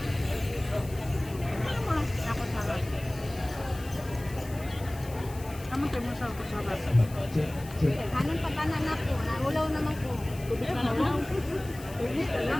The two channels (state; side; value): noise; left; hiss, 18 dB below the sound